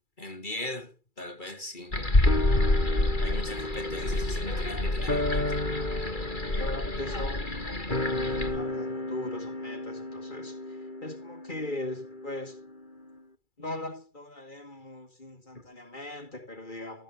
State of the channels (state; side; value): late; right; 2.3 ms